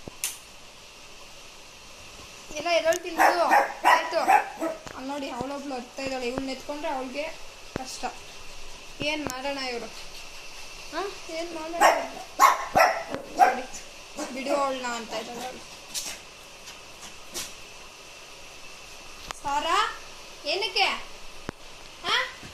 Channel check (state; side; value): identical; both; correlation 1.00